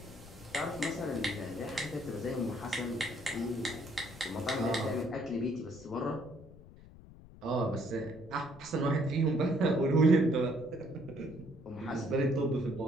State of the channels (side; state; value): left; noise; rumble, 19 dB below the sound